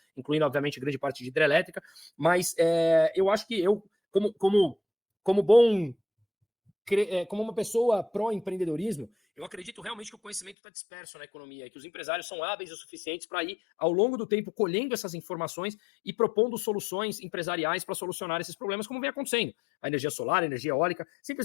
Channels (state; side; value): drops out; right; at 10.6 s